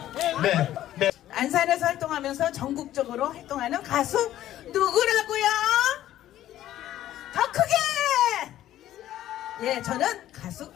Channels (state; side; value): quieter; right; 13.0 dB